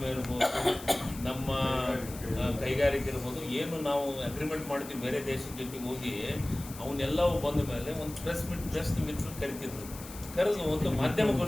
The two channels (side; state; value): left; noise; hiss, 15 dB below the sound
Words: ಇರ್ಬೋದು, ನಮ್ಮ ಕೈಗಾರಿಕೆ ಇರ್ಬೋದು, ಏನು ನಾವು ಅಗ್ರಿಮೆಂಟ್ ಮಾಡ್ತೀವಿ ಬೇರೆ ದೇಶದ ಜೊತೆಗೆ ಹೋಗಿ ಅವನ್ನೆಲ್ಲವೂ ಬಂದ ಮೇಲೆ ಒಂದು ಪ್ರೆಸ್ ಮಿತ್ರರು ಕರಿತಿದ್ರು, ಕರೆದು ಒಂದು